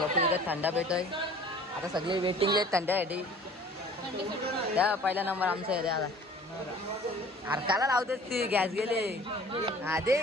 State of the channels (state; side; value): normal; both; correlation 0.48